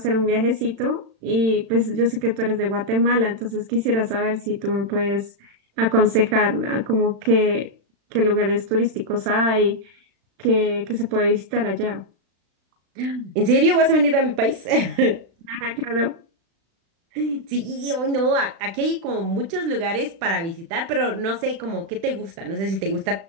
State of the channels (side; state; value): left; late; 36 ms